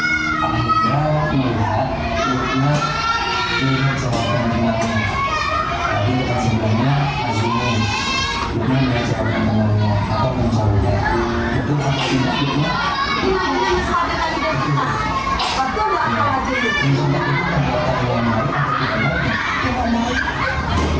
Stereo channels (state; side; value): noise; right; rumble, 21 dB below the sound